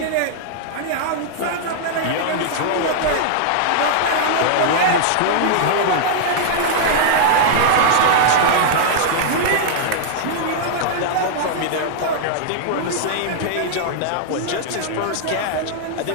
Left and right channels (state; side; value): different; both; correlation -0.01